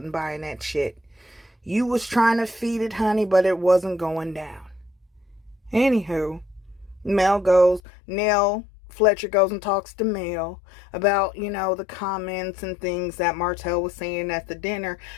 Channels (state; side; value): drops out; right; at 7.8 s